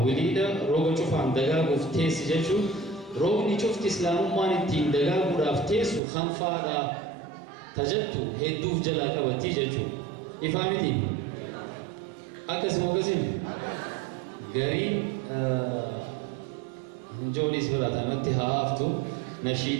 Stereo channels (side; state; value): left; drops out; at 6.0 s